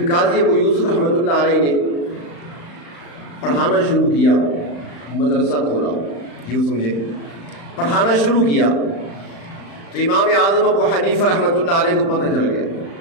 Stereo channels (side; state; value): right; late; 35 ms